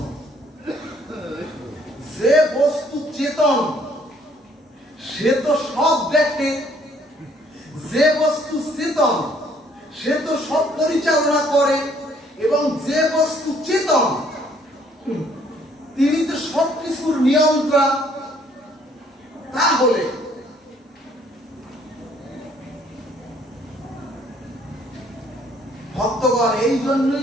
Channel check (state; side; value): normal; both; correlation 0.63